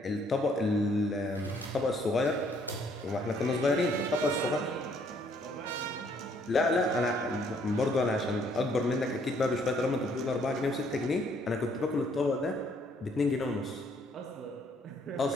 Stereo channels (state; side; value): normal; both; correlation 0.65